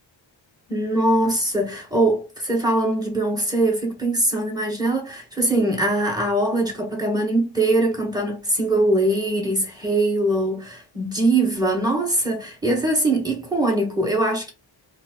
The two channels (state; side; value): normal; both; correlation 0.56